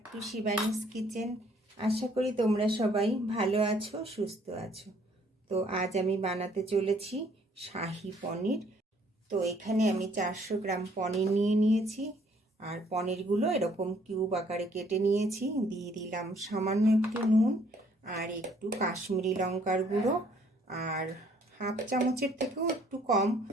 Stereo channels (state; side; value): normal; both; correlation 0.62